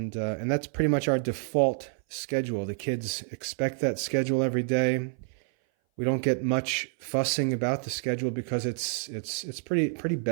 that's pretty much our default schedule. The kids expect that schedule every day. We don't get much fussing about the schedule because it's pretty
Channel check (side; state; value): left; silent; 57 dB below the other